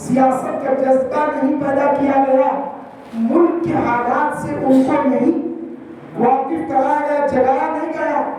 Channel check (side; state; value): both; identical; correlation 1.00